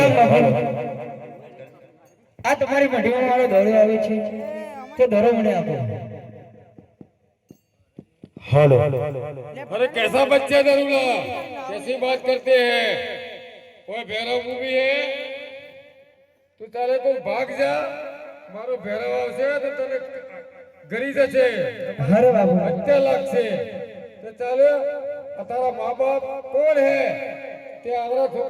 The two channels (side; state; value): both; identical; correlation 1.00